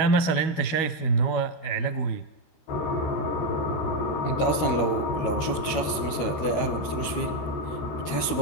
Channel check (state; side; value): late; right; 13 ms